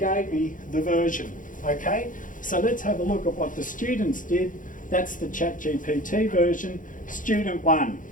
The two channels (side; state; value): right; late; 0.38 ms